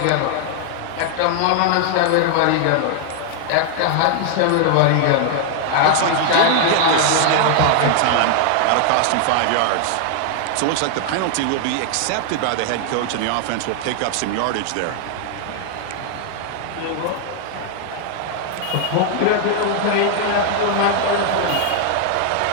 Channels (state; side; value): different; both; correlation 0.00